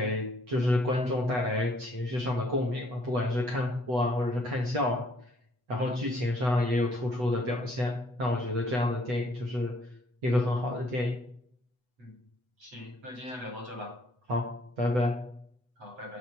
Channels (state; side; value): late; left; 8.1 ms